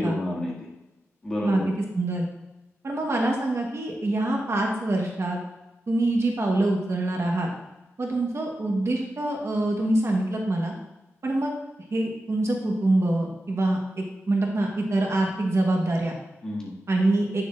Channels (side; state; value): both; normal; correlation 0.91